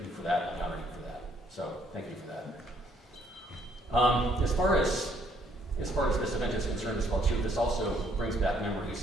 for that, and I honor you for that. So thank you for that. As far as this event is concerned as well too, this also brings back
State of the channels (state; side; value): normal; both; correlation 0.67